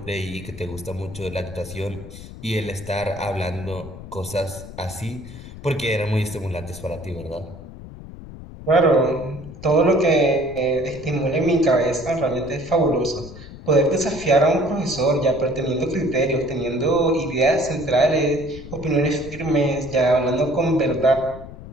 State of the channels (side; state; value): left; noise; rumble, 14 dB below the sound